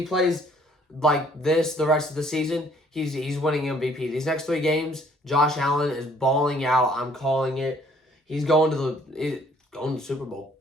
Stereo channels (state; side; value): normal; both; correlation 0.60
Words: plays like this the rest of the season, he's winning MVP. These next 3 games, Josh Allen is balling out. I'm calling it. He's going to the Super Bowl.